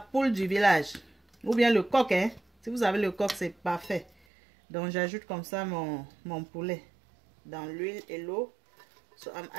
du village. Ou bien le coq, hein. Si vous avez le coq, c'est parfait. Donc j'ajoute comme ça mon poulet dans l'huile et l'eau. So I'm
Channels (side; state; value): left; drops out; at 4.1 s